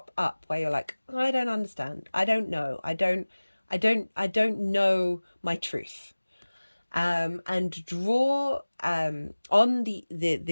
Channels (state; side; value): inverted; both; correlation -1.00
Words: up where you're like, I don't understand. I don't know. I don't know my truth. and draw on